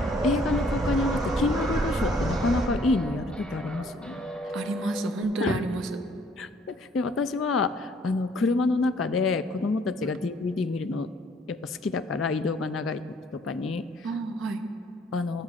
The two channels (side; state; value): both; normal; correlation 0.61